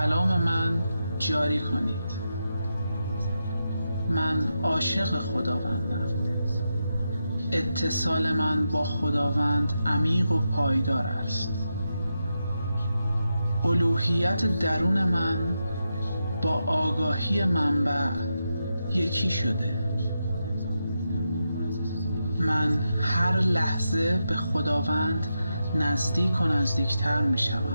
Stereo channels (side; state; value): both; inverted; correlation -0.87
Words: من جاری کنید. من عاشق خداوندم. اتصال من با خداوند عمیق و پایدار است. الوهیت درون من با آگاهی منبع یکی شده. من هر لحظه به خداوند نزدیک و نزدیکتر می